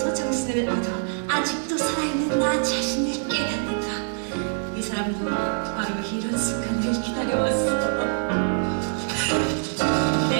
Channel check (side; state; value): left; silent; 62 dB below the other